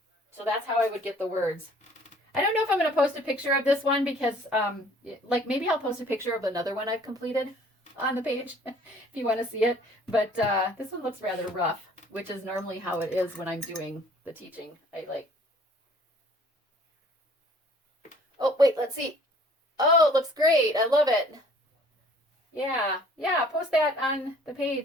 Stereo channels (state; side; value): normal; both; correlation 0.54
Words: that's how I would get the words. I don't know if I'm going to post a picture of this one because, maybe I'll post a picture of another one I've completed on the page if you want to see it. But this one looks rather rough, which is normally how it is when I'm doing the teaching. Oh, wait, let's see. Oh, it looks great. I love it. Yeah, post that on the